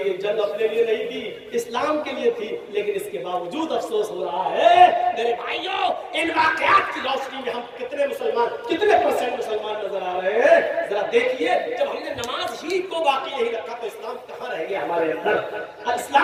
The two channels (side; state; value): both; identical; correlation 1.00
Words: جنگ اپنے لیے نہیں تھی، اسلام کے لیے تھی، لیکن اس کے باوجود افسوس ہو رہا ہے۔ میرے بھائیوں، ان واقعات کی روشنی میں ہم کتنے مسلمان، کتنے پرسنٹ مسلمان نظر آ رہے ہیں؟ ذرا دیکھیے، جب ہم نے نماز ہی کو باقی نہیں رکھا تو اسلام کہاں رہ گیا ہمارے اندر؟